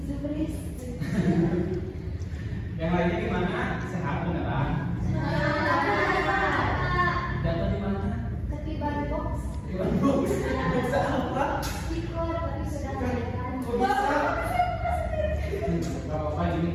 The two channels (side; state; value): both; identical; correlation 1.00